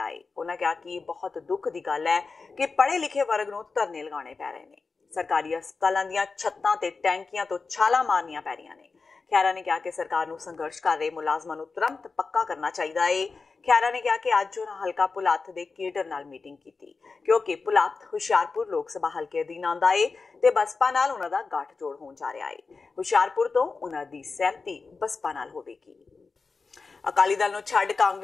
ਹੈ। ਉਹਨਾਂ ਕਿਹਾ ਕਿ ਬਹੁਤ ਦੁੱਖ ਦੀ ਗੱਲ ਹੈ ਕਿ ਪੜ੍ਹੇ ਲਿਖੇ ਵਰਗ ਨੂੰ ਧਰਨੇ ਲਗਾਉਣੇ ਪੈ ਰਹੇ ਨੇ। ਸਰਕਾਰੀ ਹਸਪਤਾਲਾਂ ਦੀਆਂ ਛੱਤਾਂ ਤੇ ਟੈਂਕੀਆਂ ਤੋਂ ਛਾਲਾਂ ਮਾਰਨੀਆਂ ਪੈ ਰਹੀਆਂ ਨੇ। ਖਹਿਰਾ ਨੇ ਕਿਹਾ ਕਿ ਸਰਕਾਰ ਨੂੰ ਸੰਘਰਸ਼ ਕਰ ਰਹੇ ਮੁਲਾਜ਼ਮਾਂ ਨੂੰ ਤੁਰੰਤ ਪੱਕਾ ਕਰਨਾ ਚਾਹੀਦਾ ਹੈ। ਖਹਿਰਾ ਨੇ ਕਿਹਾ ਕਿ ਅੱਜ ਉਹਨਾਂ ਹਲਕਾ ਪੁਲਾਥ ਦੇ ਕੇਡਰ ਨਾਲ ਮੀਟਿੰਗ ਕੀਤੀ, ਕਿਉਂਕਿ ਪੁਲਾਥ ਹੁਸ਼ਿਆਰਪੁਰ ਲੋਕ ਸਭਾ ਹਲਕੇ ਅਧੀਨ ਆਉਂਦਾ ਹੈ ਤੇ ਬਸਪਾ ਨਾਲ ਉਹਨਾਂ ਦਾ ਗੱਠਜੋੜ ਹੋਣ ਜਾ ਰਿਹਾ ਹੈ। ਹੁਸ਼ਿਆਰਪੁਰ ਤੋਂ ਉਹਨਾਂ ਦੀ ਸਹਿਮਤੀ ਬਸਪਾ ਨਾਲ ਹੋਵੇਗੀ। ਅਕਾਲੀ ਦਲ ਨੂੰ ਛੱਡ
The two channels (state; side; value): quieter; right; 4.4 dB